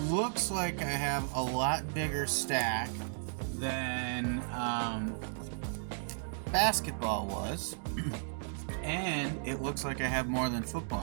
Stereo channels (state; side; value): silent; left; digital silence